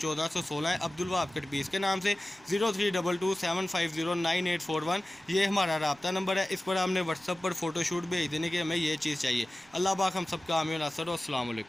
है, अब्दुल वहाब कट पीस के नाम से। 032275098841 ये हमारा रब्ता नंबर है। इस पर आपने व्हाट्सअप पर फ़ोटोशूट भेज देने की हमें ये चीज़ चाहिए। अल्लाह पाक हम सबका आमीन नासर। अस्सलाम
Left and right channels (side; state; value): right; noise; rumble, 30 dB below the sound